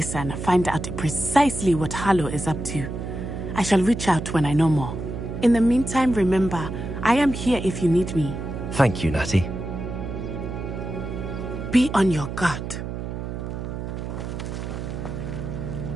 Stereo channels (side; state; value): right; noise; hum, 6 dB below the sound